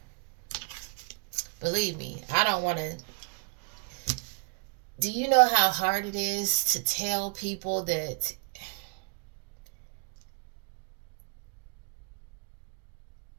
Believe me, I don't want to. Do you know how hard it is to tell people that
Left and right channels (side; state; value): left; quieter; 39.3 dB